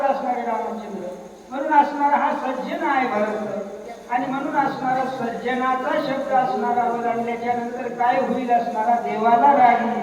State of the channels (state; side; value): identical; both; correlation 1.00